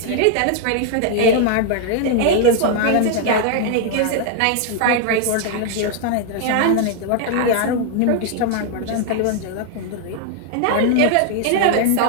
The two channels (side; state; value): both; different; correlation 0.00